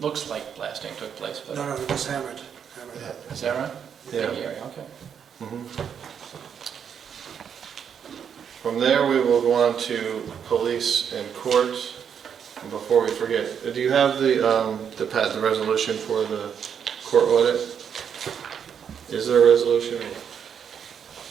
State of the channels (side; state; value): left; quieter; 7.8 dB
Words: looks like blasting took place, but No, it was hammered. is that right? Yeah. Okay. Mhm. From there, we will go on to police and court. And before we forget, do you have the resolution for the court audit? Is there a resolution?